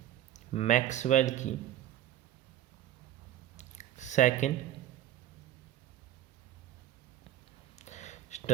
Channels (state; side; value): quieter; left; 12.2 dB